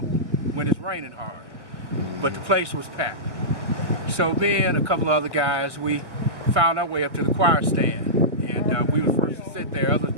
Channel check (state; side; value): late; left; 1.7 ms